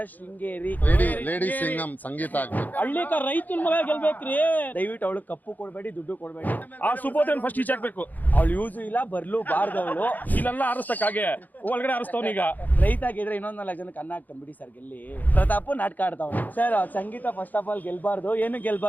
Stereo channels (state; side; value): late; right; 0.083 ms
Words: ಶೃಂಗೇರಿ ಲೇಡಿ ಸಿಂಗಂ ಸಂಗೀತ ಆಗ್ಬೇಕು. ಹಳ್ಳಿಕ ರೈತನ ಮಗ ಗೆಲ್ಬೇಕ್ರಿ. ದಯವಿಟ್ಟು ಅವಳು ಕಪ್ಪು ಕೊಡ್ಬೇಡಿ, ದುಡ್ಡು ಕೊಡ್ಬೇಡಿ. ಆ ಸುಬೋಧನ್ ಫಸ್ಟ್ ಈಚೆ ಹಾಕ್ಬೇಕು. ಅವಳು ಯೂಸು ಇಲ್ಲ, ಬರ್ಲು ಬಾರ್ದವಳು. ಇಲ್ಲೆಲ್ಲ ಆರಿಸ್ತಕ್ಕಾಗೆ ಒಳಗಡೆ ಆರಿಸ್ತವನೀಗ. ರೈತ ಗೆದ್ರೆ ಇನ್ನೊಂದ್ 4 ಜನಕ್ಕೆ ಅನ್ನ ಹಾಕ್ತಾನೆ ಬಿಡಿ ಸರ್. ಗೆಲ್ಲಿ ಪ್ರತಾಪ್ ನಾಟಕ ಆಡ್ತಾವ sir. Sangeetha first of all ಗೆಲ್ಬಾರ್ದು. ಏನು